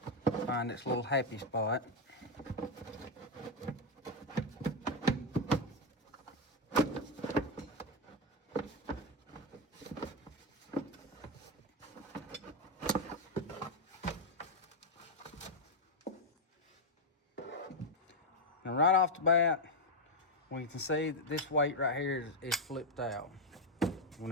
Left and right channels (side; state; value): both; normal; correlation 0.04